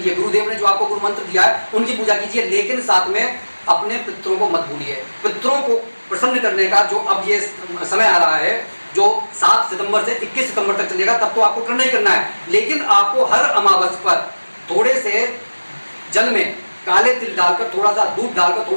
गुरुदेव ने जो आपको गुरु मंत्र दिया है उनकी पूजा कीजिए, लेकिन साथ में अपने पितरों को मत भूलिए। पितरों को प्रसन्न करने का जो अब ये समय आ रहा है, जो 7 सितंबर से 21 सितंबर तक चलेगा, तब तो आपको करना ही करना है। लेकिन आपको हर अमावस पर थोड़े से जल में काले तिल डालकर, थोड़ा सा दूध डालकर,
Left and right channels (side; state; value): both; inverted; correlation -1.00